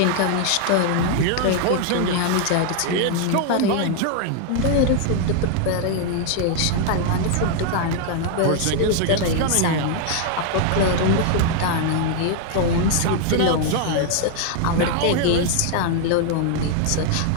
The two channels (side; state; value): both; different; correlation 0.00